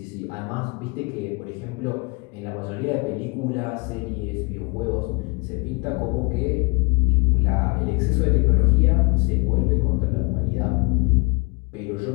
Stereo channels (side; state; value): right; quieter; 30.1 dB